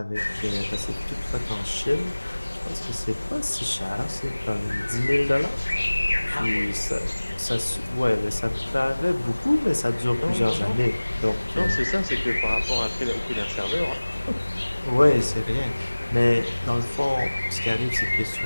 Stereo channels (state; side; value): inverted; both; correlation -1.00